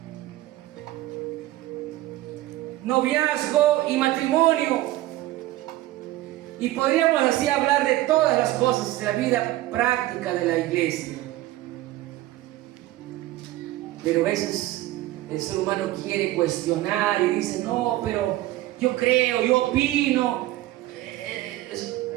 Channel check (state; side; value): quieter; left; 16.2 dB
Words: Noviazgo y matrimonio. Y podríamos así hablar de todas las cosas de la vida práctica de la iglesia. Pero a veces el ser humano quiere cuestionar y dice, no, pero yo creo, yo opino.